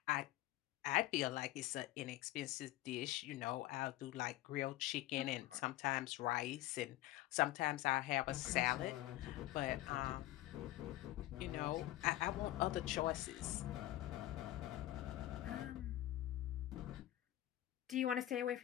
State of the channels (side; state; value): right; quieter; 15.4 dB